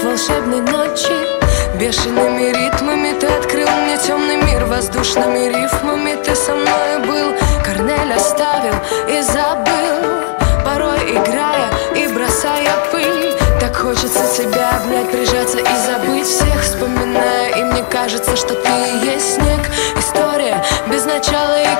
волшебной ночи. Бешеными ритмами ты открыл мне темный мир. Воздушными рифмами ты со мной был. Корнель оставил и забыл, порой играя и бросая пыль. Так хочется тебя обнять, прижаться и забыть всех. Вспоминая, и мне кажется, что ты и есть снег. История без начала и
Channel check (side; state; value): right; silent; digital silence